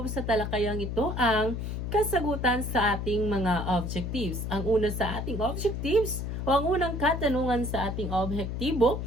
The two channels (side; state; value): left; noise; hum, 4 dB below the sound